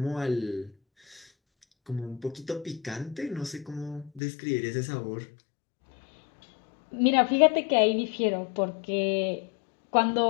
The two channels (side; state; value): right; drops out; at 4.2 s